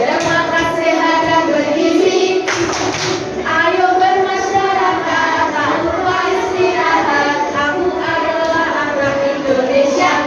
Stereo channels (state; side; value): identical; both; correlation 1.00